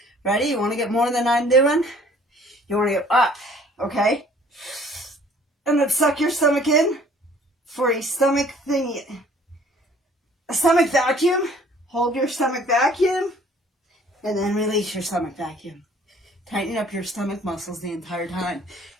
ready? You want to get more than I'm doing? You want to go up, okay? And then suck your stomach in for a stomach thingy. A stomach vacuum. Hold your stomach vacuum. And then release your stomach vacuum. Tighten up your stomach muscles the entire time.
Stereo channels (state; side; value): normal; both; correlation 0.55